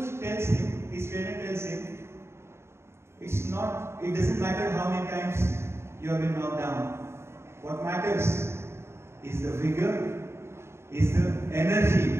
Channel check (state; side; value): late; left; 0.12 ms